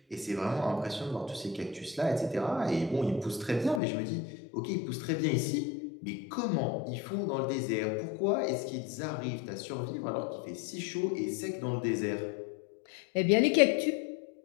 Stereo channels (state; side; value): drops out; right; at 3.8 s